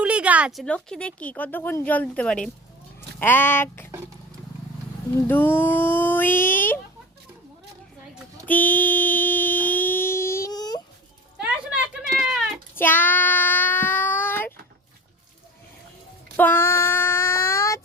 গাছ, লক্ষ্মী দেখি কতক্ষণ জল দিতে পারে। 1 2 3 4 5।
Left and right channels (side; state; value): both; normal; correlation 0.36